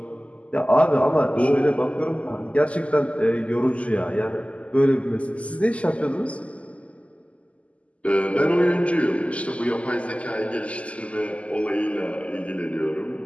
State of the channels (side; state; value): right; late; 0.063 ms